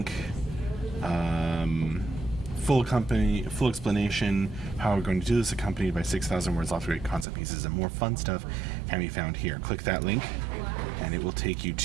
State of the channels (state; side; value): drops out; left; at 7.2 s